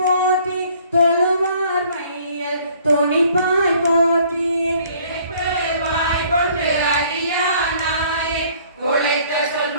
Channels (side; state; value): both; inverted; correlation -0.58